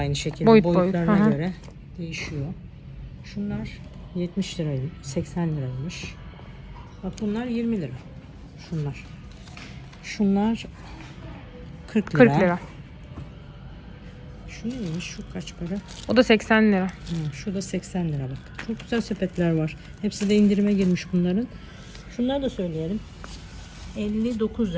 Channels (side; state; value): both; identical; correlation 1.00